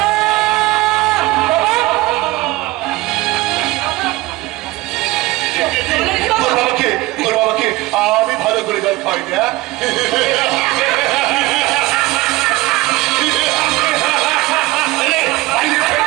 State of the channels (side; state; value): left; quieter; 19.6 dB